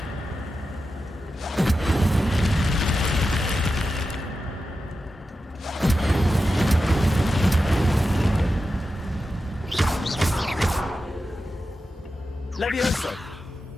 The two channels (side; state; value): both; normal; correlation 0.91